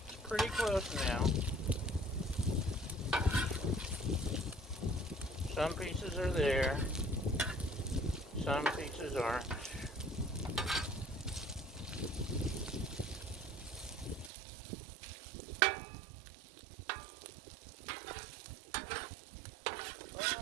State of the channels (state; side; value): drops out; left; at 14.3 s